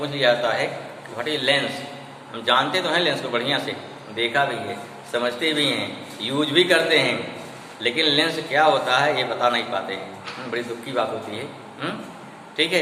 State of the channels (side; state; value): both; identical; correlation 1.00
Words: लिया जाता है व्हाट इज लेंस। हम जानते तो हैं लेंस को, बढ़िया से देखा भी है, समझते भी हैं, यूज भी करते हैं, लेकिन लेंस क्या होता है ये बता नहीं पाते हैं। बड़ी दुख की बात होती है। ठीक है,